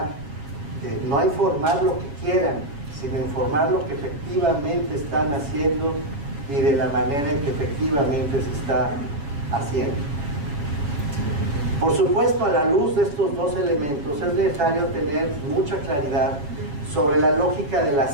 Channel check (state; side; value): late; left; 7.2 ms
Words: No a informar lo que quieran, sino informar lo que efectivamente están haciendo y de la manera en que efectivamente se está haciendo. Por supuesto, a la luz de estos dos elementos es necesario tener mucha claridad sobre la lógica de la